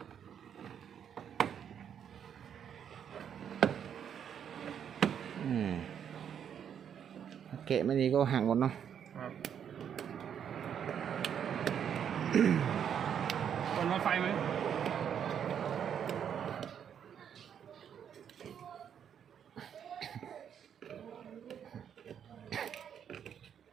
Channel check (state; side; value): quieter; left; 8.5 dB